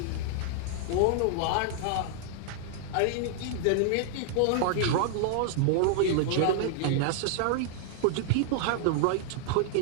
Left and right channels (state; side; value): different; both; correlation -0.01